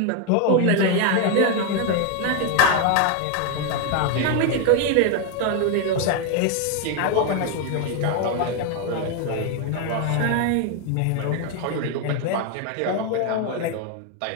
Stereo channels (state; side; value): different; both; correlation 0.01